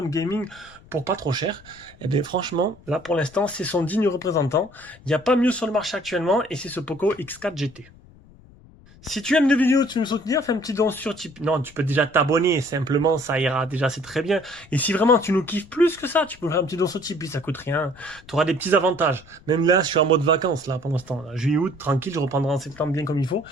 gaming pour pas trop cher, et bien franchement, là pour l'instant, c'est son digne représentant. Il n'y a pas mieux sur le marché actuellement, et c'est ce Poco X4 GT. Si tu aimes les vidéos, tu veux me soutenir, fais un petit don sur Tipeee. Non, tu peux déjà t'abonner, simplement, ça ira déjà, c'est très bien. Et si vraiment tu nous kiffes plus que ça, tu peux faire un petit don sur Tipeee, ça coûte rien. Tu auras des petits avantages. Même là, je suis en mode vacances, là, pour l'instant. Juillet, août, tranquille, je reprendrai en septembre bien comme il faut.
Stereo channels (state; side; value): noise; left; rumble, 24 dB below the sound